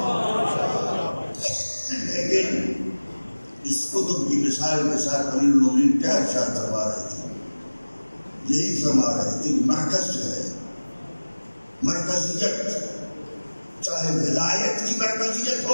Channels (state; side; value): inverted; both; correlation -1.00